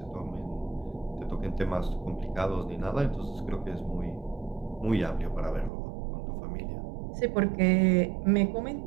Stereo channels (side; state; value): left; drops out; at 5.7 s